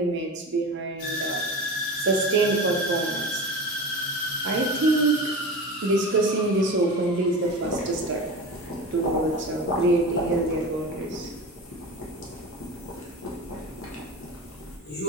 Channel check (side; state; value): both; normal; correlation 0.30